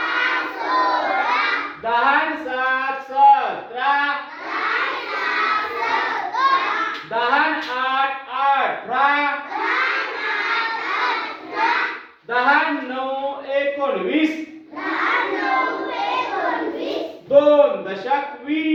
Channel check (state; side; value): identical; both; correlation 1.00